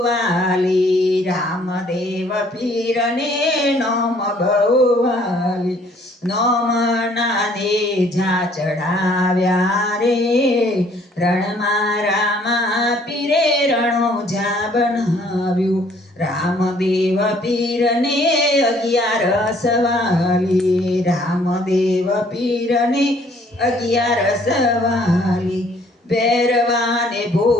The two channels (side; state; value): both; normal; correlation 0.61